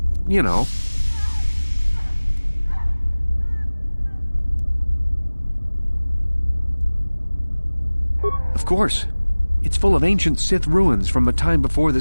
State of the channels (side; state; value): both; inverted; correlation -1.00